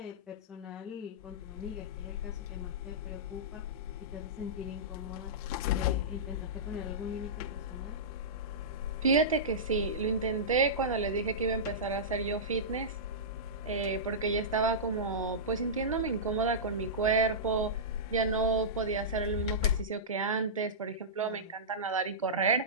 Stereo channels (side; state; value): both; normal; correlation -0.16